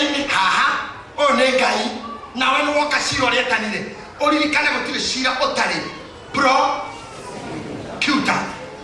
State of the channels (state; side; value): identical; both; correlation 1.00